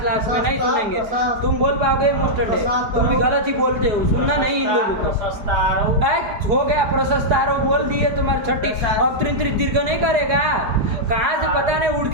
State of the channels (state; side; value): late; left; 4.7 ms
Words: में नहीं सुनेंगे। तुम बोल पाओगे मुस्टंडे, तुम भी गलत ही बोलते हो, सुनना नहीं इन लोगों को। हो गया प्रशस्तारो बोल दिए, तुम्हारी छठी। अब त्रिंत्रित दीर्घ नहीं करेगा, कहाँ से पता नहीं उड़